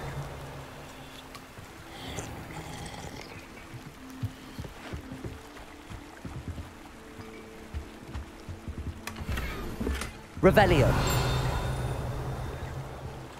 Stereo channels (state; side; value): identical; both; correlation 1.00